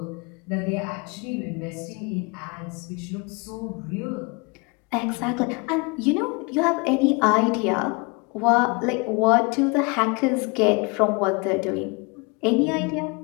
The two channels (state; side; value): quieter; right; 29.7 dB